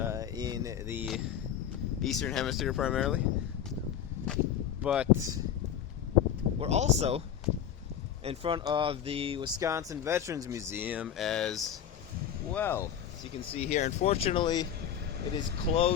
in the Eastern Hemisphere primarily. But we're also in front of the Wisconsin Veterans Museum as well. As you can see here, unfortunately, it is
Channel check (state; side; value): quieter; right; 9.3 dB